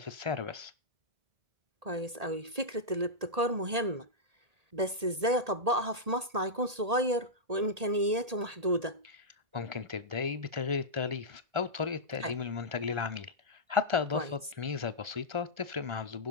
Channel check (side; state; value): left; late; 1.8 ms